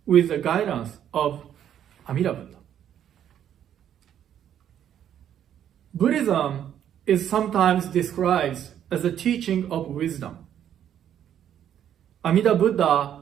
with the guidance of Amida Buddha. Buddhism is sometimes described as a teaching of wisdom. Amida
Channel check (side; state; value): left; quieter; 10.0 dB